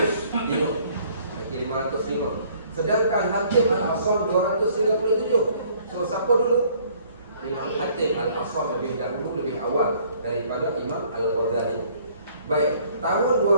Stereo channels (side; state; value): both; inverted; correlation -0.60